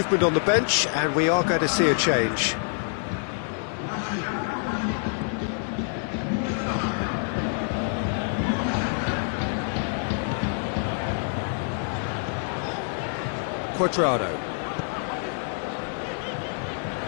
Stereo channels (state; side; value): silent; right; 61 dB below the other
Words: on the bench, and we are going to see a change. Cuadrado.